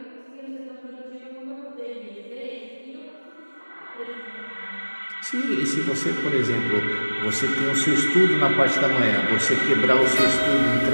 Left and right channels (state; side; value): inverted; both; correlation -1.00